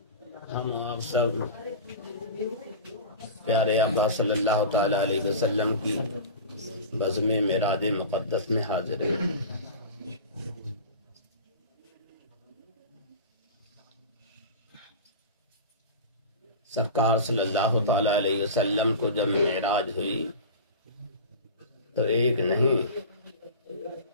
ہم آپ سب پیارے آقا صلی اللہ تعالی علیہ وسلم کی بزم معراج مقدس میں حاضر ہیں. سرکار صلی اللہ تعالی علیہ وسلم کو جب معراج ہوئی تو ایک نہیں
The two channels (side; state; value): both; inverted; correlation -0.32